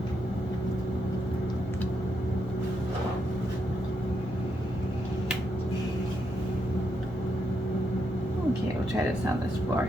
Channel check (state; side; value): normal; both; correlation 0.80